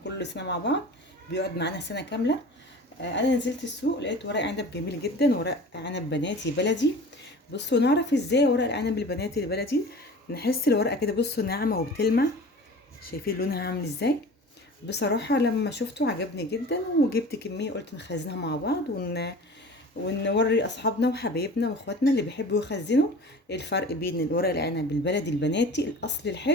كل سنة مع بعض، بيقعد معانا سنة كاملة. انا نزلت السوق لقيت ورق عنب جميل جدا، ورق عنب بناتي بلدي. بصوا نعرف ازاي ورق العنب البناتي البلدي. نحس الورقة كده، بصوا ناعمة وبتلمع. شايفين لونها عامل ازاي؟ بصراحة لما شفته عجبني جدا وجبت كمية، قلت نخزنها مع بعض ونوري اصحابنا وحبايبنا واخواتنا اللي بيحبوا يخزنوا الفرق بين الورق العنب البلدي البناتي الاصلي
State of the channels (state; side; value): normal; both; correlation 0.39